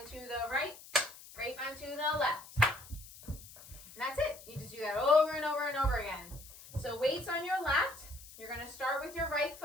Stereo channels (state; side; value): noise; left; hiss, 18 dB below the sound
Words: to the right, grapevine to the left. And that's it. You just do that over and over and over again. So weights on your left, you're going to start with your right